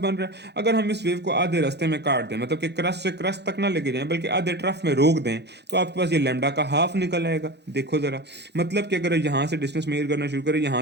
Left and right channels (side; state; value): left; late; 0.49 ms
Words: रहा है। अगर हम इस वेव को आधे रास्ते में काट दें, मतलब कि क्रस्ट से क्रस्ट तक ना लेके जाएं बल्कि आधे ट्रफ में रोक दें, तो आपके पास ये लैम्डा का हाफ निकल आएगा। देखो जरा, मतलब कि अगर यहाँ से डिस्टेंस मेजर करना शुरू करें,